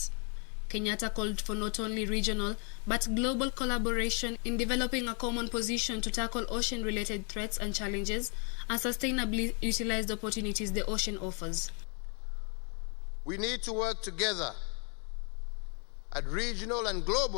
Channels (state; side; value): quieter; right; 38.5 dB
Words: Kenyatta called for not only regional but global collaboration in developing a common position to tackle ocean-related threats and challenges and sustainably utilize the opportunities the ocean offers. We need to work together at regional and